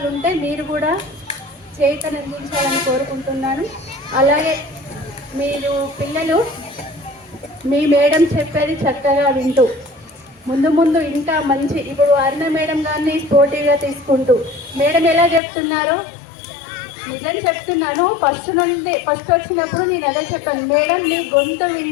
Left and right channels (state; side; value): drops out; right; at 15.4 s